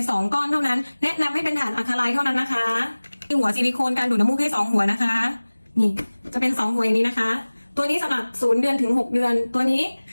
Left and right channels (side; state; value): both; inverted; correlation -1.00